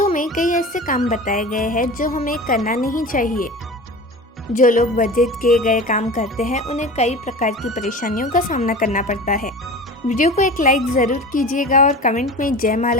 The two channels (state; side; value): normal; both; correlation 0.34